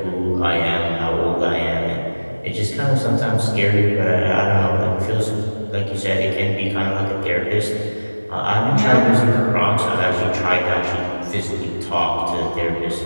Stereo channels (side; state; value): both; inverted; correlation -1.00